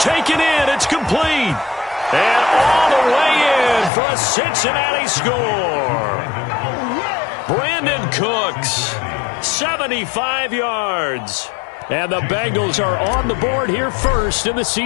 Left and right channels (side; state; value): right; drops out; at 3.9 s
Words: in. It's complete. And all the way in for a Cincinnati score. Brandon Cooks, 75 yards. And the Bengals are on the board here first in the